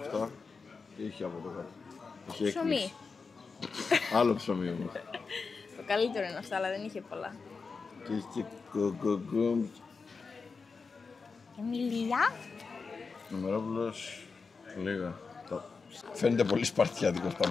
Αυτά. Τι έχει από εδώ κάτω? Έχει Ψωμί. έκπληξη. Άλλο ψωμί όμως. Το καλύτερο είναι αυτά, αλλά δεν είχε πολλά. Και έχει και κοκοκόμ. Και μιλιά. Νομερόπουλος. Λίγα. Φαίνεται πολύ σπαρτιάτικος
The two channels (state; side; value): quieter; right; 4.7 dB